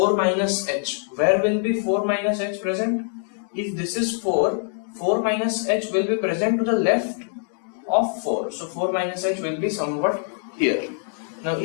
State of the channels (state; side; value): silent; right; 63 dB below the other